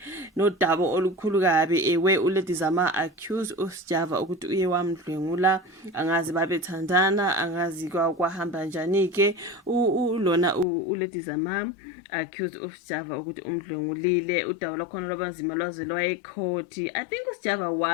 nodaba olukhulu kabi ewe uLady Zama accused uSjava ukuthi uye wamdlwengula, angazi babethandana, angazi kwahamba njani ke. Lona uLady Zama accused uSjava ukuthi umdlwengulile. Udaba lwakhona lwabanzima lwaze lwayecourt. I think uSjava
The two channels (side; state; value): right; drops out; at 10.7 s